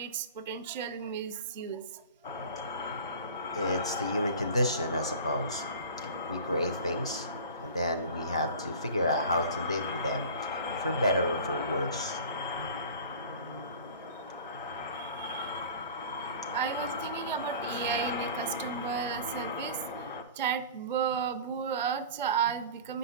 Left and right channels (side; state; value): both; inverted; correlation -0.38